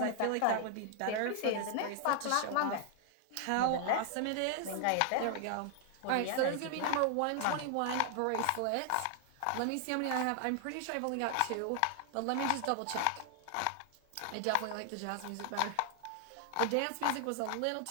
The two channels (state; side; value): different; both; correlation 0.00